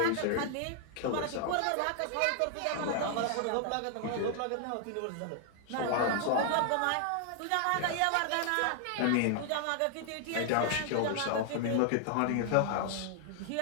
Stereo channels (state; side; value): different; both; correlation 0.00